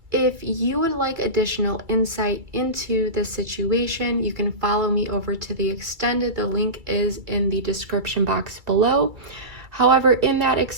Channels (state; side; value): late; left; 2.3 ms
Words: If you would like additional insight into the situation, you can follow me over to the extended. The link is in the description box below. However, in that